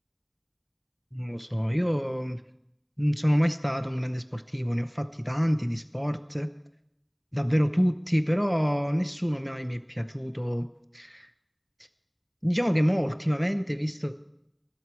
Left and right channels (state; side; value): identical; both; correlation 1.00